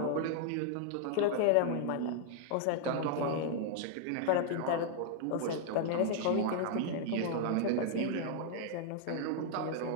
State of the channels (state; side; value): different; both; correlation -0.01